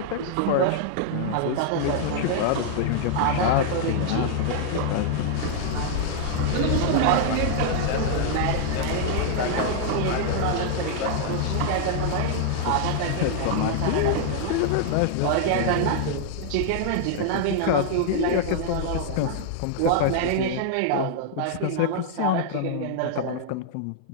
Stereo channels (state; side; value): different; both; correlation -0.01